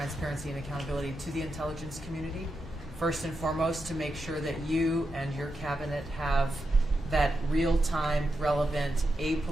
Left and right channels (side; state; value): both; normal; correlation 0.87